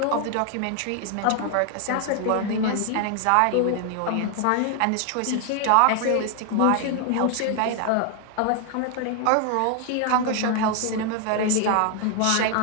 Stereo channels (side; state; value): both; different; correlation 0.00